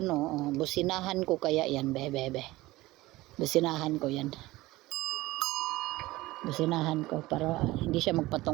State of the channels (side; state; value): left; quieter; 18.8 dB